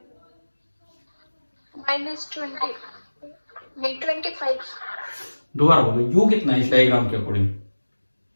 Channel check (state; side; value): inverted; both; correlation -1.00